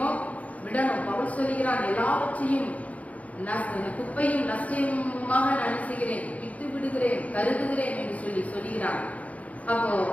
விடணும். பவுல் சொல்லுகிறான், எல்லாவற்றையும் குப்பையும் நஷ்டமாக நினைச்சுகிறேன், விட்டு விடுகிறேன், கருதுகிறேன் என்று சொல்லுகிறான். அப்போ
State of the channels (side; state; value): right; late; 0.069 ms